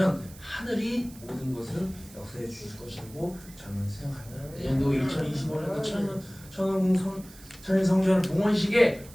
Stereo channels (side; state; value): right; noise; hiss, 21 dB below the sound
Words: 하늘이 모든 것을 역사해 주실 것이라고 저는 생각합니다. 내년도 2025년도 천일성전 봉헌식에